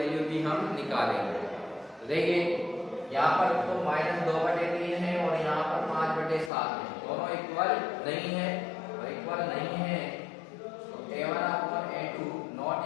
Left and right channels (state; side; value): drops out; right; at 6.5 s